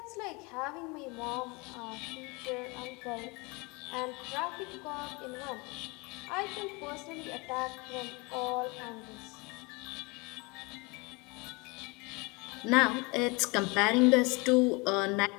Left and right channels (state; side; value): quieter; right; 27.6 dB